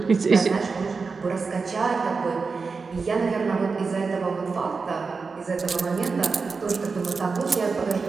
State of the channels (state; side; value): quieter; left; 4.7 dB